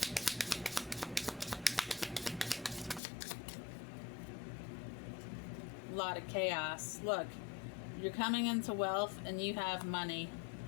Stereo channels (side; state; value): right; drops out; at 3.0 s